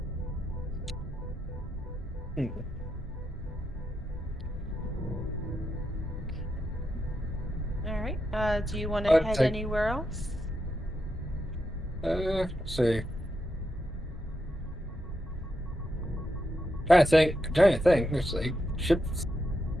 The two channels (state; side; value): normal; both; correlation 0.84